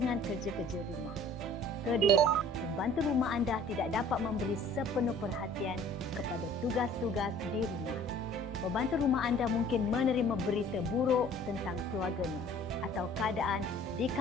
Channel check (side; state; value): both; normal; correlation 0.51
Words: kerja-kerja rumah. Kedua, pembantu rumah anda tidak dapat memberi sepenuh perhatian kepada tugas-tugas di rumah. Pembantu rumah anda mungkin menerima berita buruk tentang keluarganya atau keadaan di